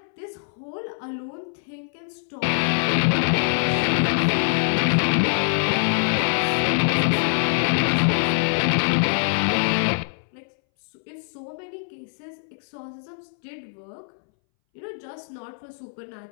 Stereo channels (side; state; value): right; silent; 62 dB below the other